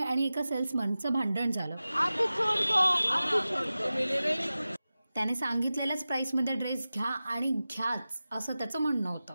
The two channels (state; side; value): inverted; both; correlation -0.95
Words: एका सेल्समनचं भांडण झालं। अभी छोड़ दो, अभी छोड़ दो। त्याने सांगितलेल्याच प्राइसमध्ये ड्रेस घ्या आणि घ्याच असं त्याचं म्हणणं